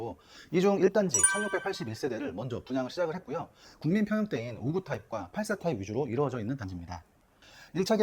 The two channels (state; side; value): identical; both; correlation 1.00